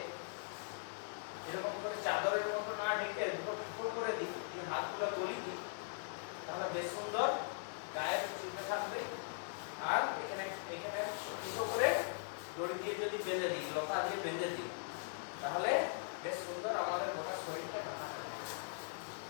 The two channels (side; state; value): right; silent; digital silence